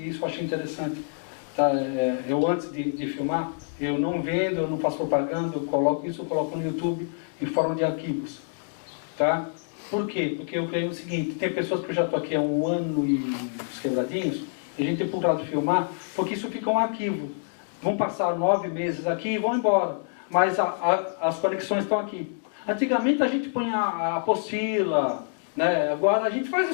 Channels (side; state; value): right; silent; digital silence